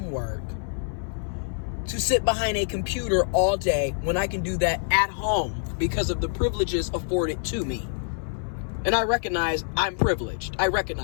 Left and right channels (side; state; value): right; silent; 59 dB below the other